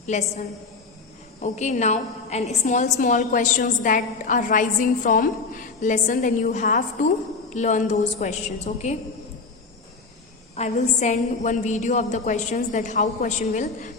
lesson. Okay, now and small questions that are rising from lesson, then you have to learn those questions. Okay, I will send one video of the questions, that how question will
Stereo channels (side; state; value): right; quieter; 4.3 dB